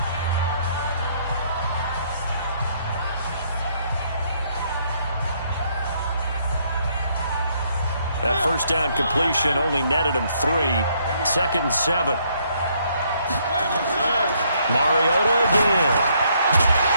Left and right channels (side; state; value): both; inverted; correlation -0.70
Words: That first down completion only netted him 3. 2nd and 7. Mariota again.